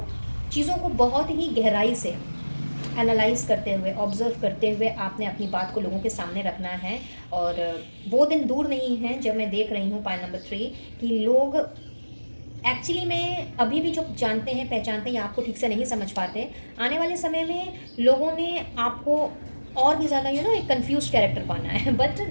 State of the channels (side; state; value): both; inverted; correlation -1.00